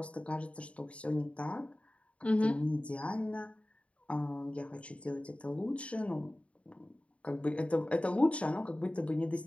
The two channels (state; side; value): late; right; 0.063 ms